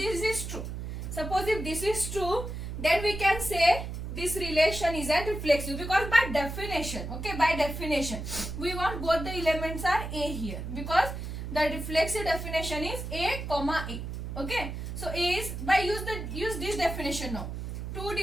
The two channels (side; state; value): right; noise; hum, 6 dB below the sound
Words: is true, suppose if this is true, then we can say this relation is a reflexive, because by definition, okay, by definition, we want both the elements are A here, because the reflexive definition is A comma A. Okay, so A is, by use this definition now. 2